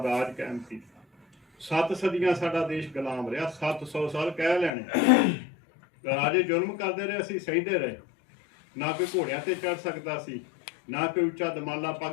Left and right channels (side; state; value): right; drops out; at 4.7 s